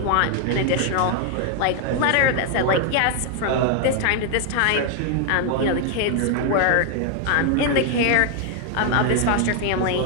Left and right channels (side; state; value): both; different; correlation 0.00